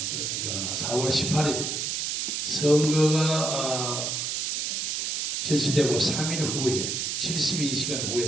그러니까 4월 18일 선거가 실시되고 3일 후에 72시간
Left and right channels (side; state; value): right; noise; hiss, 1 dB below the sound